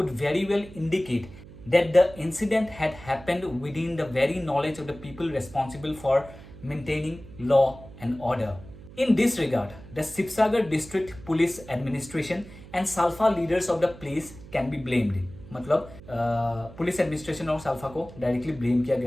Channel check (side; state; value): right; noise; hum, 18 dB below the sound